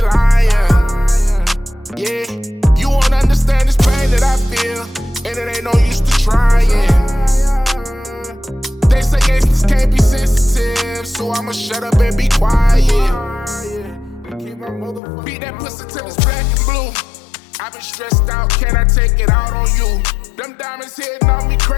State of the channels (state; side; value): drops out; right; at 15.0 s